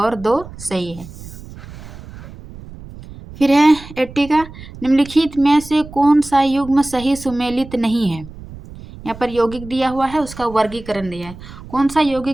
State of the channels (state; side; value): noise; right; rumble, 16 dB below the sound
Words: 2 सही है। फिर है 80 का, निम्नलिखित में से कौन सा युग्म सही सुमेलित नहीं है। यहाँ पर यौगिक दिया हुआ है, उसका वर्गीकरण दिया है। कौन सा